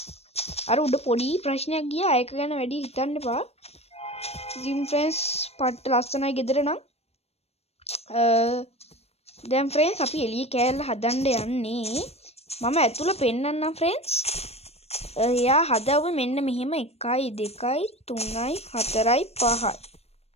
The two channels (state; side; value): late; right; 0.30 ms